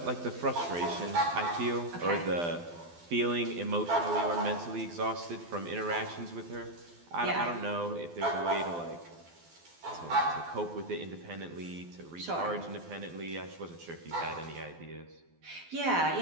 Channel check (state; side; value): late; left; 12 ms